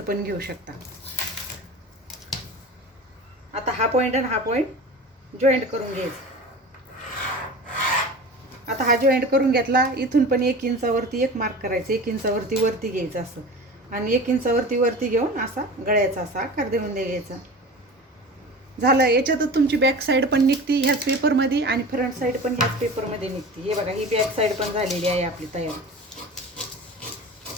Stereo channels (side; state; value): both; normal; correlation 0.34